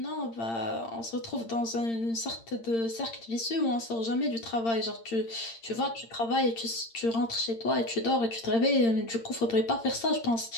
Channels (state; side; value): late; right; 8.8 ms